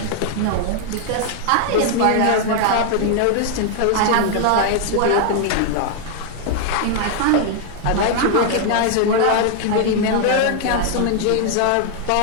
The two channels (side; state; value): both; different; correlation 0.00